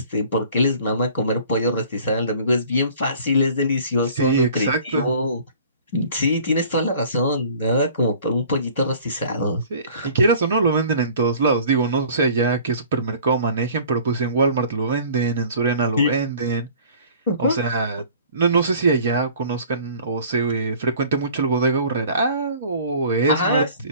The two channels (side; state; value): both; inverted; correlation -0.49